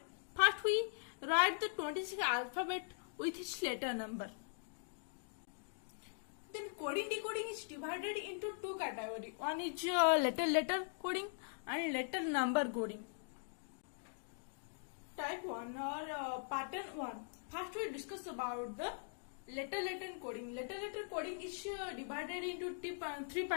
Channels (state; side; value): silent; right; digital silence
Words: first we write the 26 alphabet with its letter number. Then coding decoding is divided into two categories. One is letter coding and letter number coding. Type 1 or pattern 1. First we discuss about the letter coding. Letter coding is divided into three